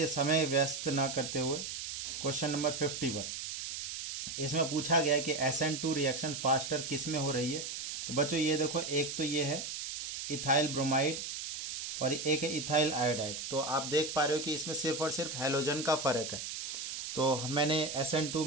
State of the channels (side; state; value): right; noise; hiss, 5 dB below the sound